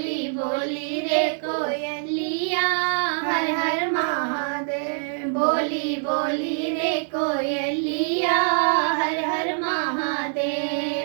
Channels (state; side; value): silent; left; 62 dB below the other